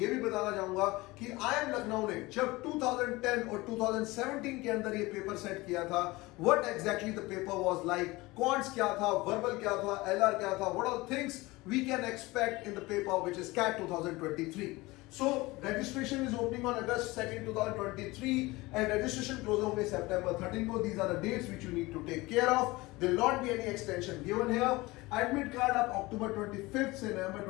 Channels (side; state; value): right; quieter; 21.3 dB